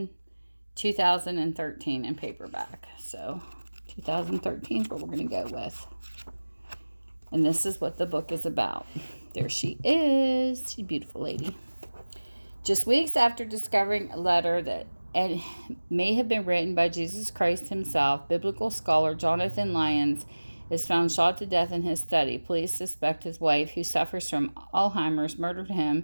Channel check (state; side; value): inverted; both; correlation -1.00